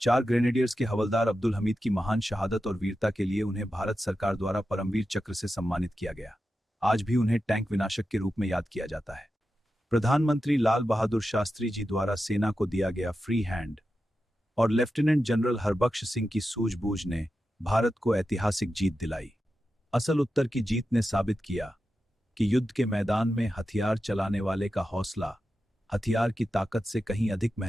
ग्रेनेडियर्स के हवलदार अब्दुल हमीद की महान शहादत और वीरता के लिए उन्हें भारत सरकार द्वारा परमवीर चक्र से सम्मानित किया गया। आज भी उन्हें टैंक विनाशक के रूप में याद किया जाता है। प्रधानमंत्री लाल बहादुर शास्त्री जी द्वारा सेना को दिया गया फ्री हैंड और लेफ्टिनेंट जनरल हरबख्श सिंह की सूझबूझ ने भारत को ऐतिहासिक जीत दिलाई। असल उत्तर की जीत ने साबित किया कि युद्ध के मैदान में हथियार चलाने वाले का हौसला हथियार की ताकत से कहीं अधिक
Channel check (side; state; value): both; normal; correlation 0.91